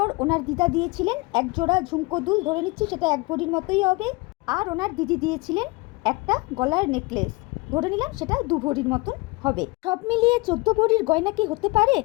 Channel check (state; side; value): quieter; right; 24.7 dB